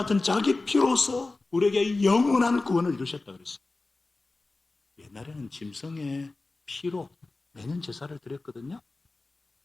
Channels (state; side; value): quieter; right; 3.3 dB